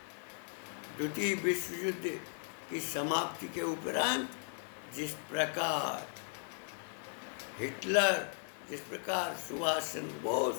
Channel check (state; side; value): silent; right; 53 dB below the other